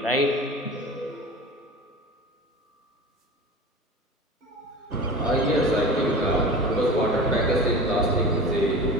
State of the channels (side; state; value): both; normal; correlation 0.34